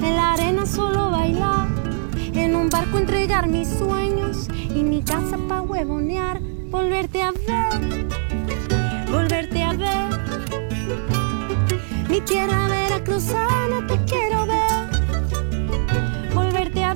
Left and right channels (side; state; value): left; silent; digital silence